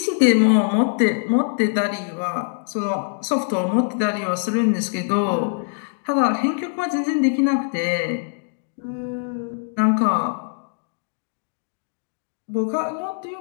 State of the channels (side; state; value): right; silent; digital silence